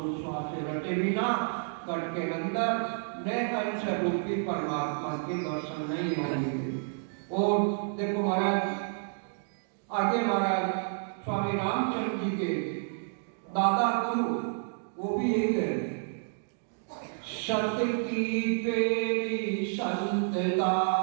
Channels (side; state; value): left; silent; digital silence